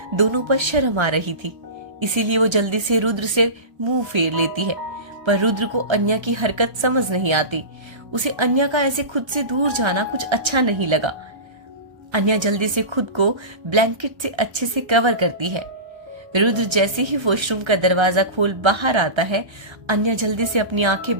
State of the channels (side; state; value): left; late; 1.3 ms